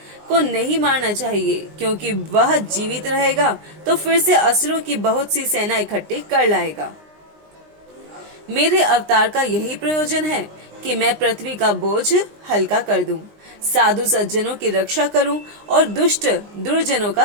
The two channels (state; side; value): late; left; 19 ms